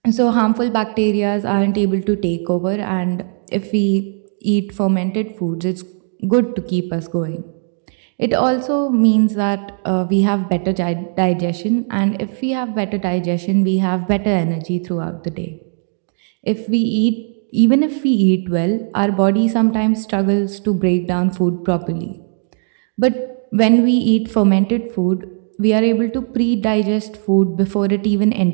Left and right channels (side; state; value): left; silent; 62 dB below the other